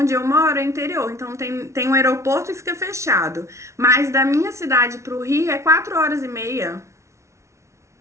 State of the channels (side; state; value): left; late; 0.14 ms